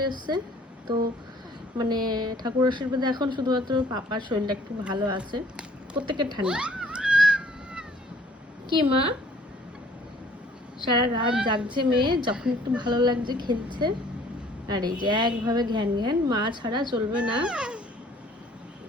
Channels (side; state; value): both; normal; correlation 0.56